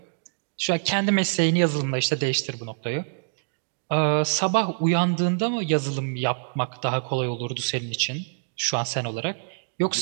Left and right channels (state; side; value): silent; left; digital silence